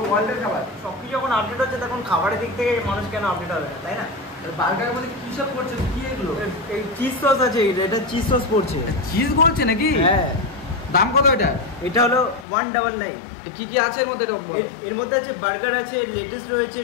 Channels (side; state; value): right; drops out; at 12.5 s